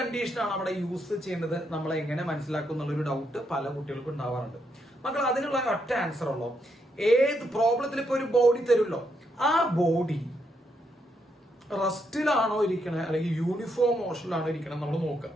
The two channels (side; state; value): both; normal; correlation 0.78